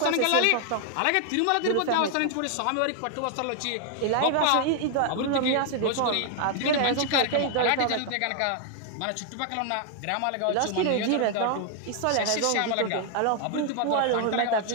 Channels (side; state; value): both; different; correlation 0.00